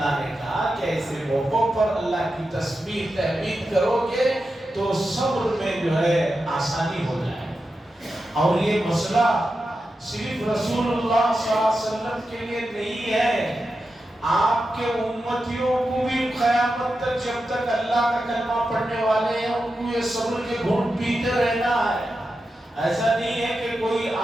نے کہا کہ ایسے موقعوں پر اللہ کی تسبیح تحمید کرو گے تو صبر میں جو ہے آسانی ہو جائے۔ اور یہ مسئلہ صرف رسول اللہ صلی اللہ علیہ وسلم کے لیے نہیں ہے، آپ کے امتیوں کو بھی قیامت تک جب تک اللہ کا کلمہ پڑھنے والے ہیں ان کو یہ صبر کے گھونٹ پیتے رہنا ہے۔ ایسا نہیں ہے کہ کوئی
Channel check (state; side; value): normal; both; correlation 0.90